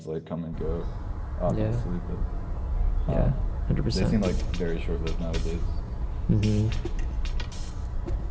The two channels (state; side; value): identical; both; correlation 1.00